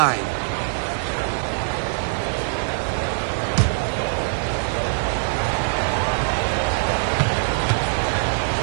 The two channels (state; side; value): silent; left; digital silence